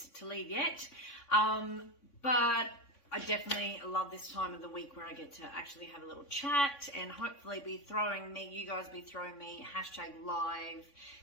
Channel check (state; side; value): late; right; 3.5 ms